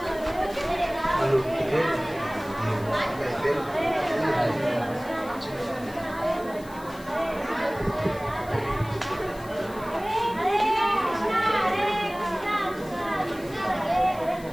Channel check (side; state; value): left; noise; hiss, 21 dB below the sound